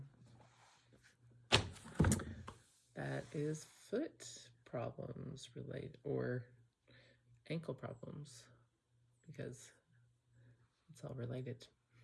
that is foot problems related, or ankle problems, because it's all related.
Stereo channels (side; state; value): both; identical; correlation 1.00